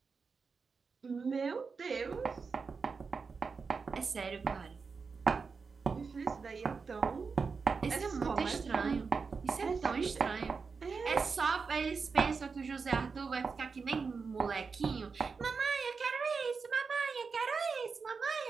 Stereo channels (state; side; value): quieter; left; 5.0 dB